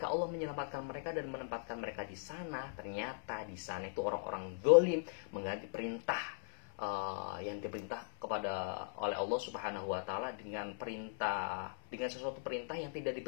Allah menyelamatkan mereka dan menempatkan mereka di sana, ternyata di sana itu orang-orang zalim mengganti perintah yang diperintah oleh Allah Subhanahu wa taala dengan sesuatu perintah yang tidak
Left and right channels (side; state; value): right; silent; 52 dB below the other